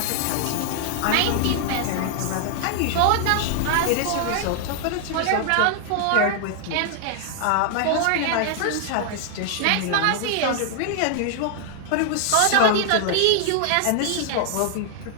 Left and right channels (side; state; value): both; different; correlation 0.00